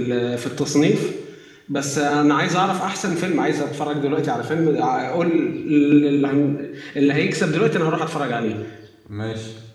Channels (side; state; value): both; identical; correlation 1.00